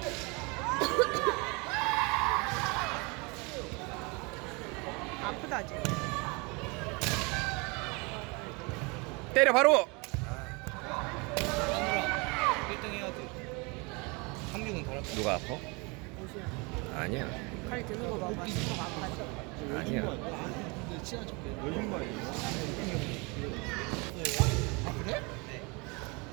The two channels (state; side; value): quieter; left; 28.8 dB